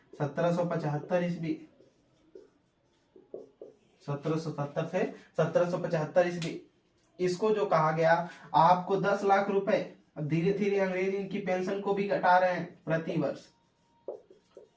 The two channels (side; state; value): both; identical; correlation 1.00